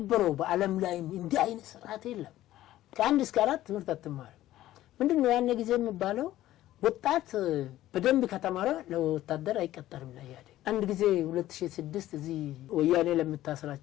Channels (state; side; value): quieter; right; 14.4 dB